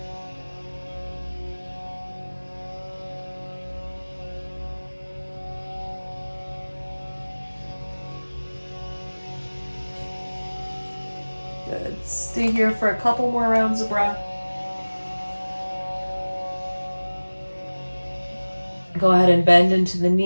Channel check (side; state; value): both; inverted; correlation -1.00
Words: Good. Stay here for a couple more rounds of breath. Go ahead and bend into the